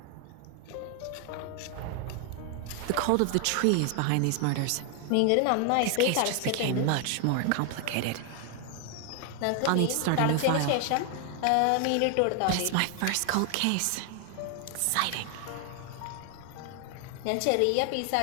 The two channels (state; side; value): different; both; correlation 0.00